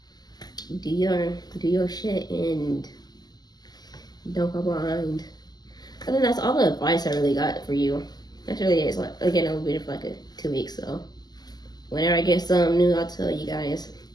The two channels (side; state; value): right; late; 0.20 ms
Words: do your shit and don't go behind. I think that's all the advice I really got for you. That's really it. Like, again, I'll be here for like 2 weeks, so whenever I get something new, I'll tell you guys.